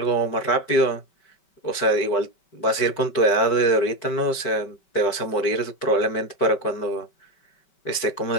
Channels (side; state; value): right; late; 5.2 ms